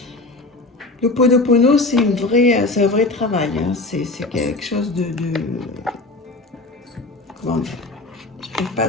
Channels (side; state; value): right; quieter; 3.1 dB